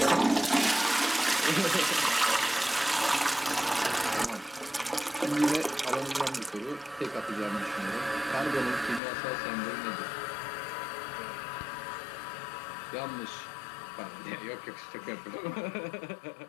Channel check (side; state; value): right; drops out; at 9.0 s